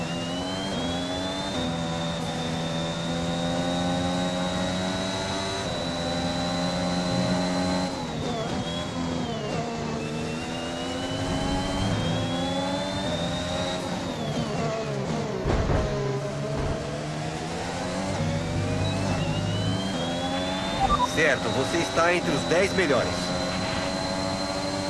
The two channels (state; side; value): identical; both; correlation 1.00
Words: Certo, você está entre os 10 melhores.